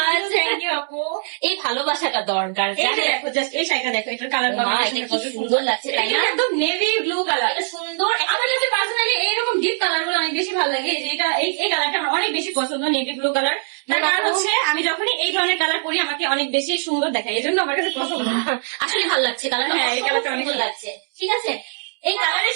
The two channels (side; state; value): left; silent; digital silence